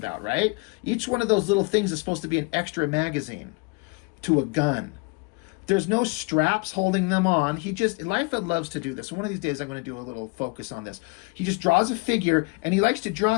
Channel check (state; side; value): quieter; right; 29.0 dB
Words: right? Each one of those little things is supposed to be an extra magazine to a gun. There's no straps holding them on. Liefeld loves to do this. One of these days I'm going to do a little focus on this. He just draws a figure, and he likes to draw